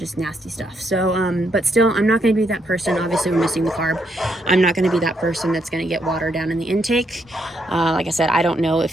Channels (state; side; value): normal; both; correlation 0.77